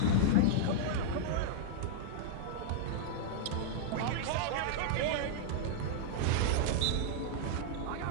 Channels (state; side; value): different; both; correlation -0.01